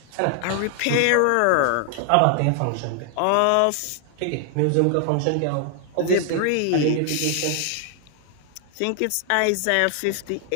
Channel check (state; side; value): different; both; correlation 0.00